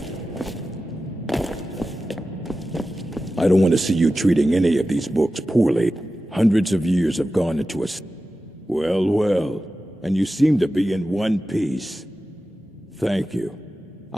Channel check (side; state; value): both; normal; correlation 0.94